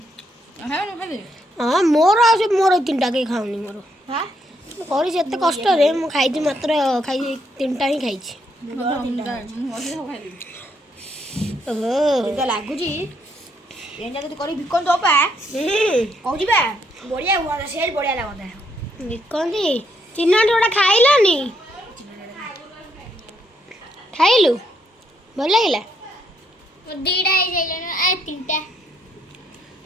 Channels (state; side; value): normal; both; correlation 0.74